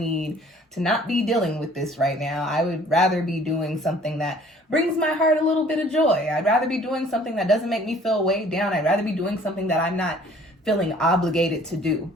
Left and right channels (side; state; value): both; normal; correlation 0.54